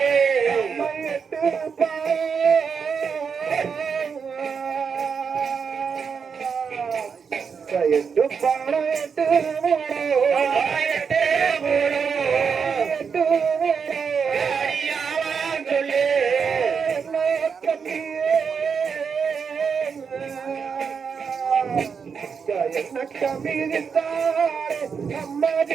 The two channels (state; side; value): quieter; left; 6.2 dB